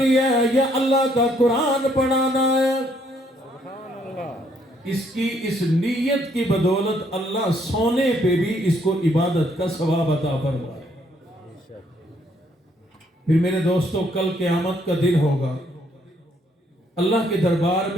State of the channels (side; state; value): both; normal; correlation 0.69